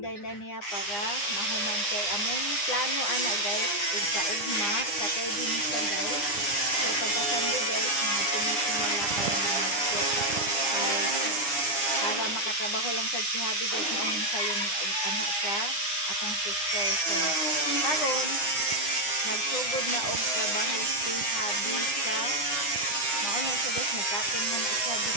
na niya para mahuman kay among plano ana guys ug kaugma sa tuig ni siya guys. So pagka-Sunday guys, mga tinitingala para malapot. Para makatrabaho lang sa si Habi guys, maong sayo ni anak sa atong sister. So karon nagsugod na og trabaho si Habi sa mauna siya guys, nagkating mo na siya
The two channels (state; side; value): late; right; 9.8 ms